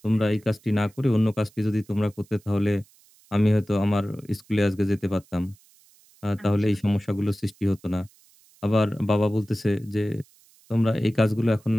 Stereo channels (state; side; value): noise; right; hiss, 30 dB below the sound